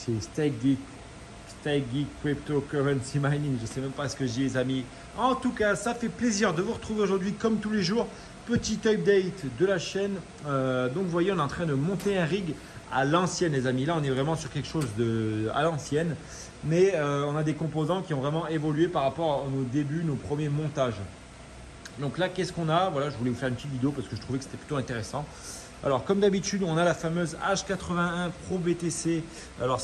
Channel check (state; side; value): identical; both; correlation 1.00